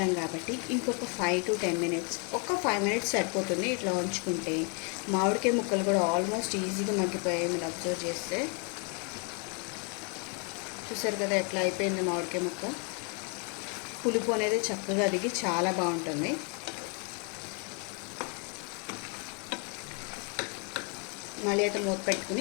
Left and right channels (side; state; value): right; quieter; 36.8 dB